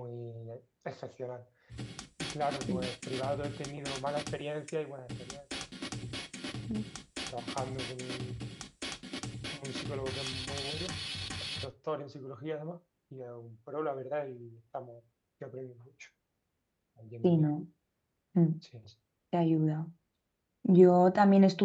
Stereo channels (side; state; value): both; identical; correlation 1.00